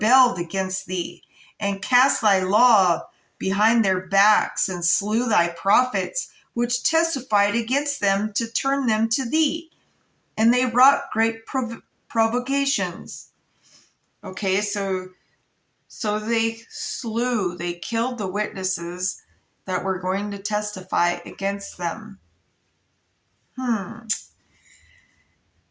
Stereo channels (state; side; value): identical; both; correlation 1.00